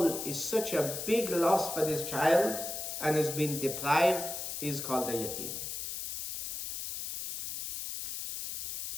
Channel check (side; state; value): left; noise; hiss, 5 dB below the sound